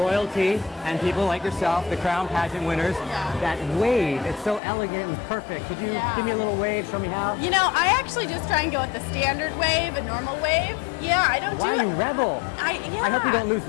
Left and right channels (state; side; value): drops out; right; at 4.6 s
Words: and people like yourself, the crown pageant winners, that wave. It's so elegant and perfect. Could you give me a little wave? Show me how. I actually just try and go with the standard wave, a normal wave. Yeah, I don't do it. Why you rebel? I hope you don't lose